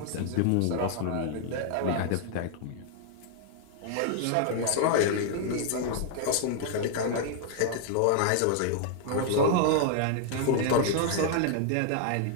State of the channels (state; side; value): different; both; correlation 0.00